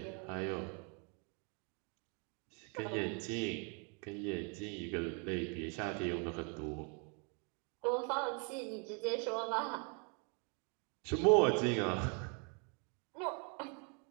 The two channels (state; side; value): quieter; left; 36.1 dB